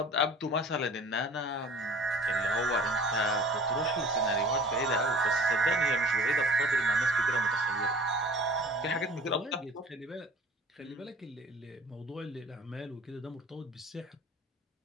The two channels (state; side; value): normal; both; correlation 0.45